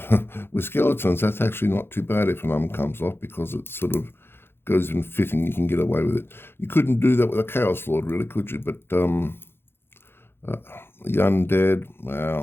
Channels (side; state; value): right; late; 0.11 ms